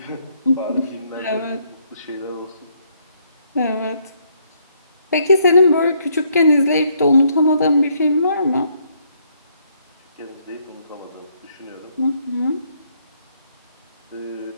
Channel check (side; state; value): both; inverted; correlation -0.70